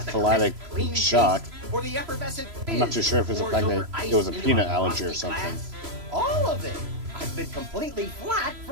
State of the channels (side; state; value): left; late; 3.0 ms